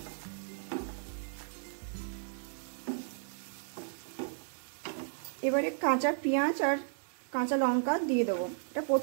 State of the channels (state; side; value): silent; left; digital silence